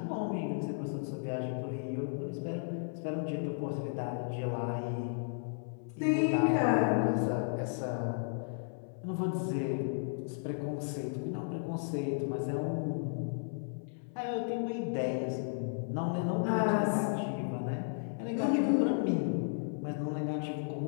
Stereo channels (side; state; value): right; silent; 55 dB below the other